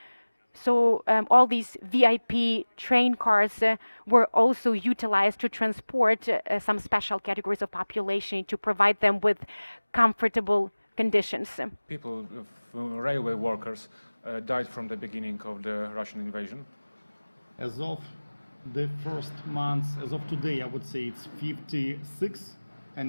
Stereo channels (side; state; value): both; inverted; correlation -1.00